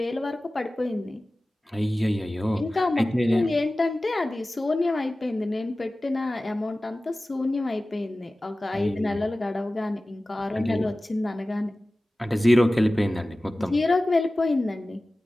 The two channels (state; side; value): normal; both; correlation 0.97